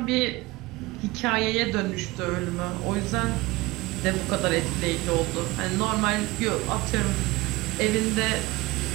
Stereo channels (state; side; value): quieter; left; 21.0 dB